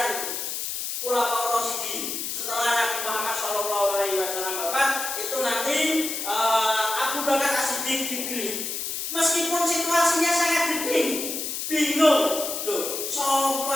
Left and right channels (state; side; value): noise; left; hiss, 4 dB below the sound